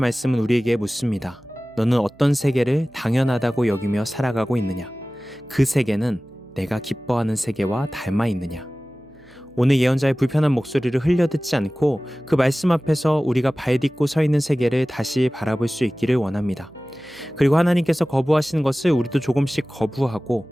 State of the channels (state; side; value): noise; right; hum, 29 dB below the sound